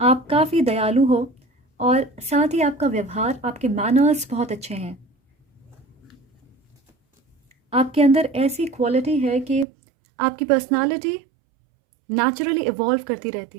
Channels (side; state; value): left; drops out; at 9.7 s